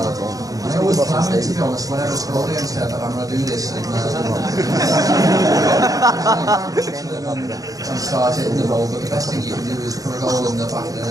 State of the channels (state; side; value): late; left; 0.17 ms